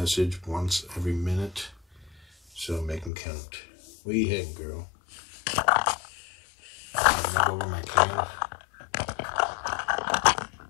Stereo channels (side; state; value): right; drops out; at 3.1 s